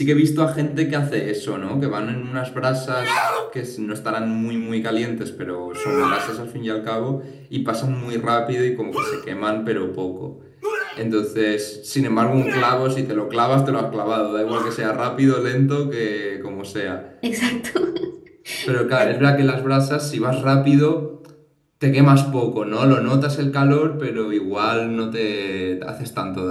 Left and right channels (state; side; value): identical; both; correlation 1.00